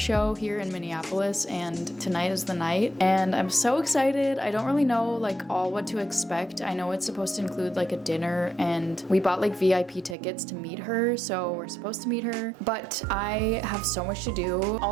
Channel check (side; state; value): left; drops out; at 10.2 s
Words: here in Minneapolis, and tonight is the night. And I'm so excited. I don't really know like all what to expect. I know it's supposed to include like a dinner, and we bought like VIP tickets to meet her, so we're supposed to meet her. But I have so much to do.